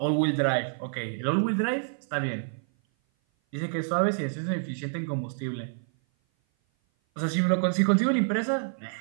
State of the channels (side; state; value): left; silent; 56 dB below the other